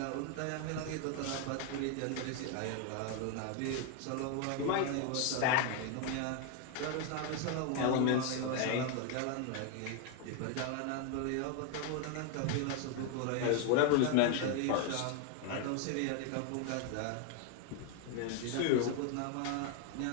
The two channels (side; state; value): both; different; correlation 0.01